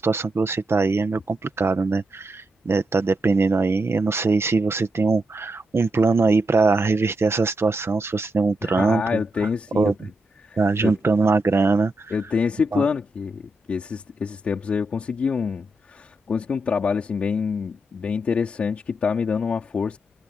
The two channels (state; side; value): normal; both; correlation 0.83